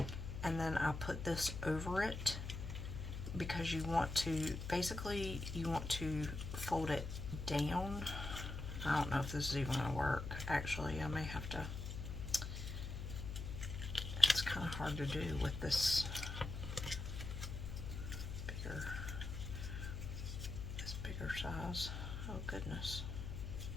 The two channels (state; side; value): noise; left; hum, 5 dB below the sound